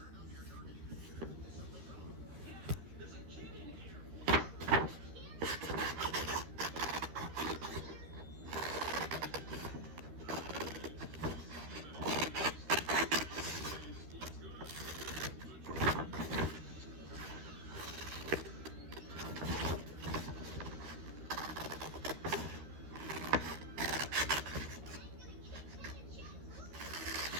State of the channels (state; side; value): late; left; 12 ms